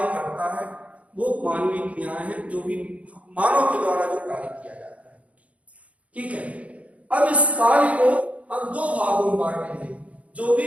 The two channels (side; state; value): left; late; 0.066 ms